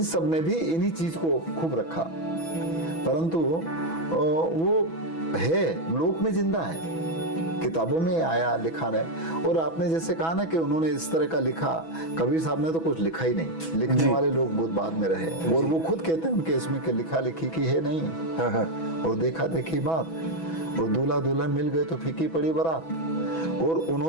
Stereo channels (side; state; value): right; late; 6.1 ms